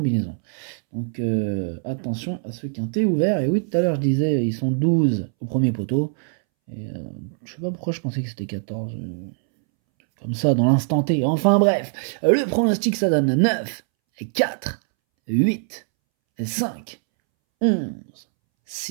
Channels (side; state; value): left; silent; 64 dB below the other